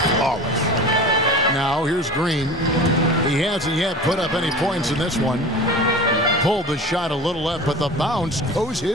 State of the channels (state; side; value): normal; both; correlation 0.35